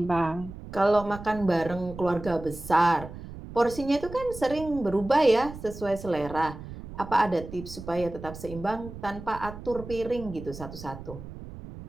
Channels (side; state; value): right; noise; rumble, 13 dB below the sound